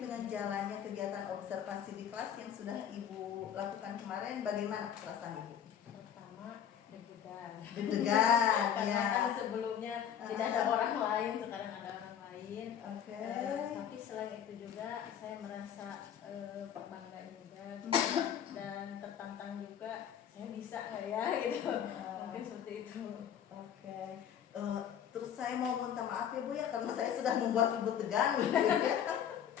dengan jalannya kegiatan observasi di kelas yang sudah Ibu lakukan kemarin, bagaimana perasaan Ibu? Pertama, deg-degan. Deg-degan, Karena ya. kan sebelumnya tidak ada orang lain, sekarang ada orang lain. Oke. Tapi selain itu juga saya merasa bangga juga dan tertantang juga. Saya bisa nggak ya gitu? Mungkin seperti itu. Oke. Terus saya mau minta maaf ya Bu ya, karena saya sudah membuat Ibu tegang gitu ya.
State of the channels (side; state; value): right; quieter; 9.2 dB